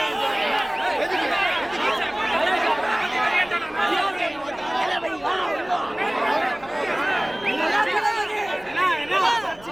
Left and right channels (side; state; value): left; noise; rumble, 24 dB below the sound